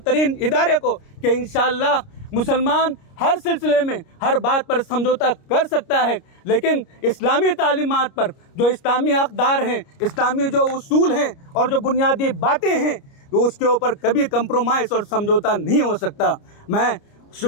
इदारे को, कि इंशाअल्लाह मुसलमान हर सिलसिले में हर बात पर समझौता कर सकता है, लेकिन इस्लामी तालीमात पर जो इस्लामी अक़दार हैं, इस्लामी जो उसूल हैं और जो बुनियादी बातें हैं, तो उसके ऊपर कभी कंप्रोमाइज़ और समझौता नहीं हो सकता। मैं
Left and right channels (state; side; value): late; right; 29 ms